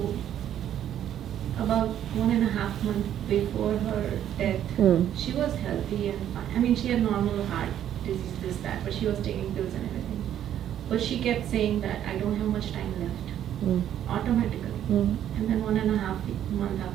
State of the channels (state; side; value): quieter; left; 10.7 dB